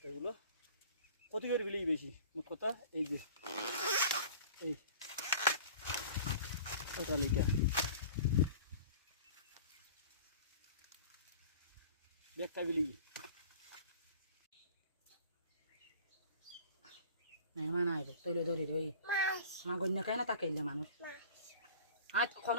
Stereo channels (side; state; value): both; inverted; correlation -0.43